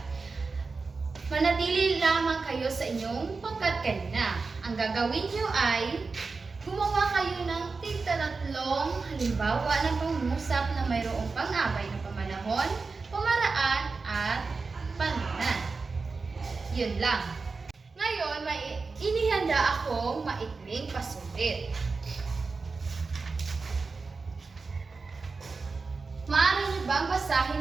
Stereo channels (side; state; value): left; quieter; 4.3 dB